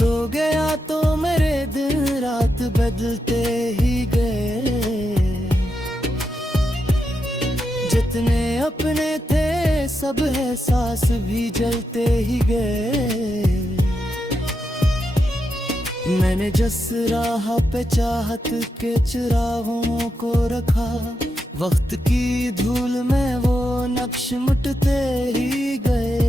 गया तो मेरे दिन रात बदलते ही गए जितने अपने थे सब एहसास भी जलते ही गए मैंने जिस राह पे चाहत के चिरागों को रखा वक्त की धूल में वो नक्श मिटते ही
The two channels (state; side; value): normal; both; correlation 0.85